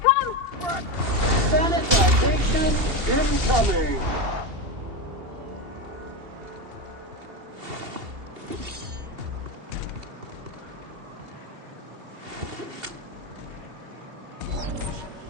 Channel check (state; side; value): late; left; 2.8 ms